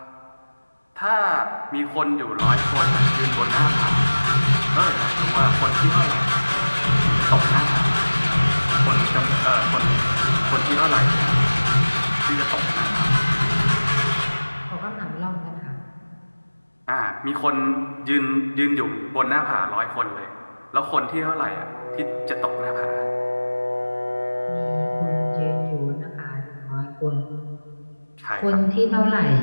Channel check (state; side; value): inverted; both; correlation -1.00